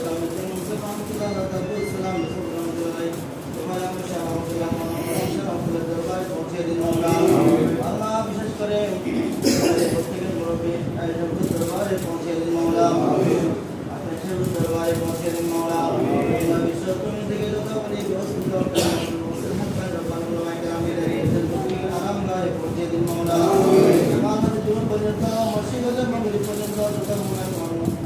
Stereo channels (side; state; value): both; identical; correlation 1.00